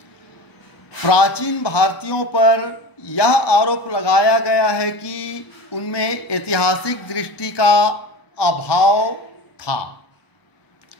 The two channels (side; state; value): right; late; 1.1 ms